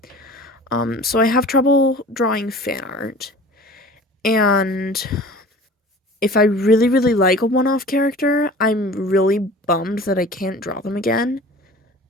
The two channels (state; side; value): normal; both; correlation 0.42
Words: So I have trouble drawing fan art, and if I really, really like a one-off character, I'm really bummed that I can't draw them again.